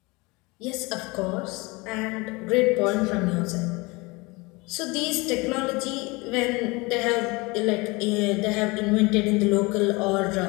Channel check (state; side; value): quieter; right; 25.1 dB